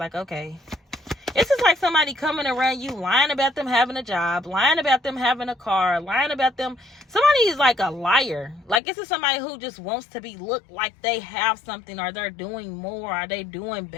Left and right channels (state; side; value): drops out; right; at 8.8 s